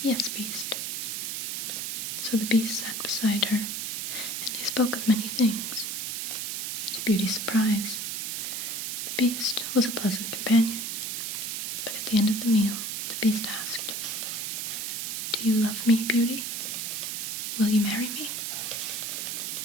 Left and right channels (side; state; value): right; noise; hiss, 3 dB below the sound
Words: Beast." So the Beast sat beside her, and they spoke of many things. To Beauty's surprise, the Beast was a pleasant companion, but at the end of the meal, the Beast asked, "Do you love me, Beauty? Will you marry me?"